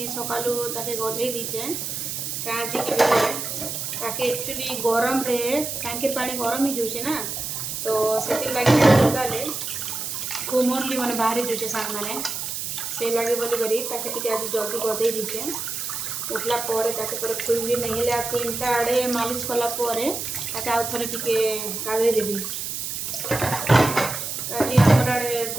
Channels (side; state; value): right; noise; hiss, 4 dB below the sound